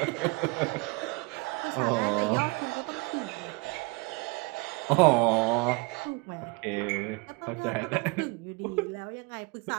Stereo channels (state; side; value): quieter; left; 27.5 dB